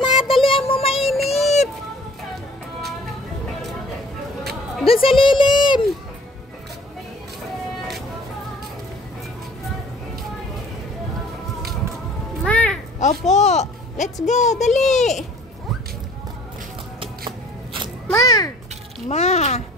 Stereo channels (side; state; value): both; normal; correlation 0.52